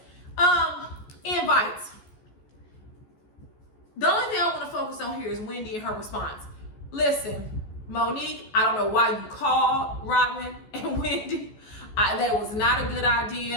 invites. The only thing I want to focus on here is Wendy and her response. Listen, Monique, I don't know why you called Robin and Wendy. That was not a good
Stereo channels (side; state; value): right; late; 14 ms